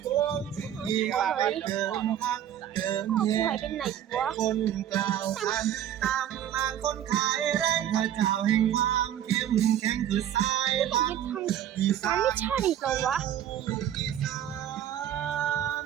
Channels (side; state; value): left; quieter; 10.7 dB